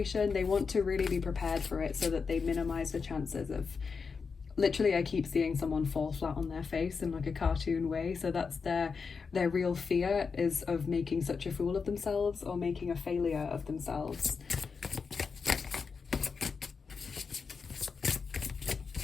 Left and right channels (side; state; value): right; quieter; 5.3 dB